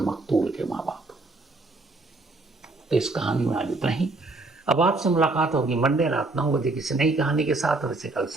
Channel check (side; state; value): left; quieter; 3.2 dB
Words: मकतूल के माँ बाप हों। तो इस कहानी में आज इतना ही। अब आपसे मुलाकात होगी मंडे रात 9 बजे किसी नई कहानी के साथ। वैसे कल